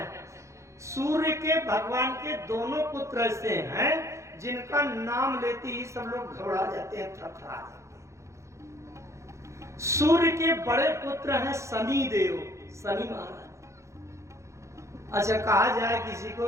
सूर्य के भगवान के दोनों पुत्र ऐसे हैं जिनका नाम लेते ही सब लोग घबरा जाते हैं, थरथरा जाते हैं। सूर्य के बड़े पुत्र हैं शनि देव, शनि महाराज। अच्छा, कहा जाए किसी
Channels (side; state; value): left; late; 0.14 ms